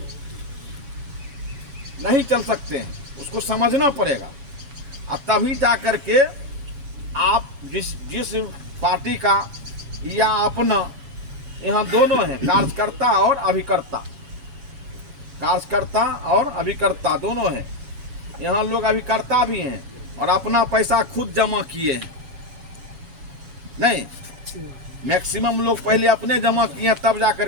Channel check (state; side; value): late; left; 7.1 ms